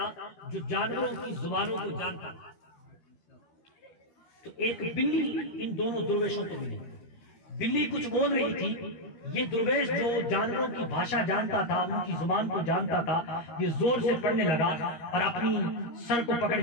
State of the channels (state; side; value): late; right; 13 ms